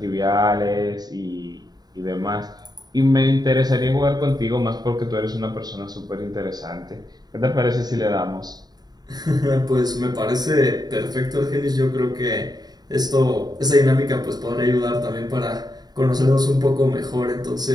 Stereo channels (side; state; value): left; late; 0.19 ms